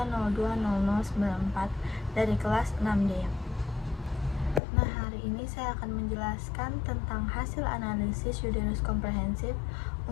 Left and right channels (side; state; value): right; drops out; at 4.6 s